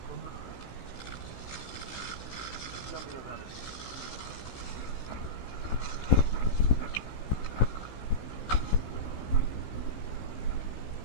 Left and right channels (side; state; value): right; late; 16 ms